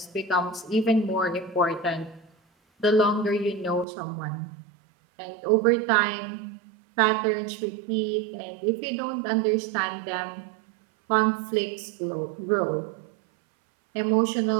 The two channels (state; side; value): drops out; left; at 3.9 s